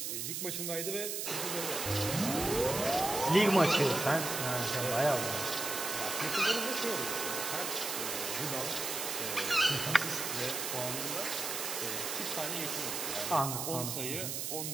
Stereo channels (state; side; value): noise; right; hiss, 3 dB below the sound